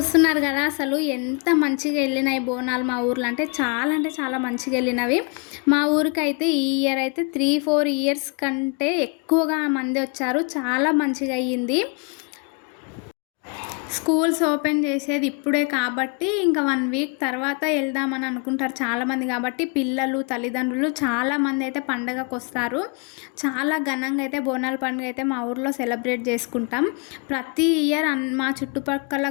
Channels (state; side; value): quieter; right; 34.3 dB